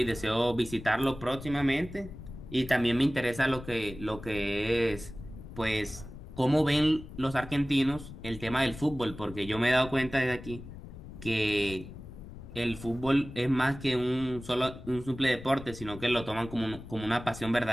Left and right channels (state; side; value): noise; left; rumble, 14 dB below the sound